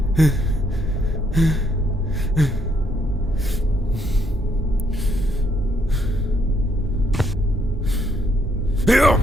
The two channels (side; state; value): both; normal; correlation 0.72